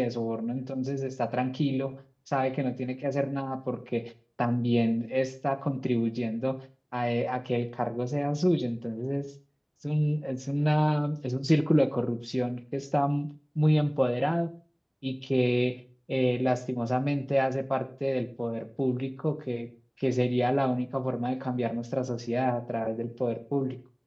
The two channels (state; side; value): identical; both; correlation 1.00